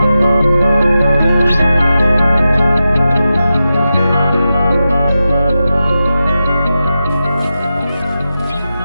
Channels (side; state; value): both; inverted; correlation -0.91